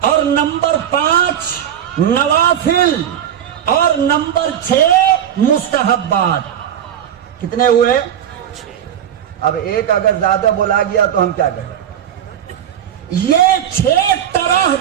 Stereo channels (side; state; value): left; quieter; 9.8 dB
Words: اور نمبر 5 نوافل، اور نمبر 6 مستحبات۔ کتنے ہوئے؟ اب ایک اگر زیادہ بولا گیا تو ہم کیا کریں؟ یہ 6 طرح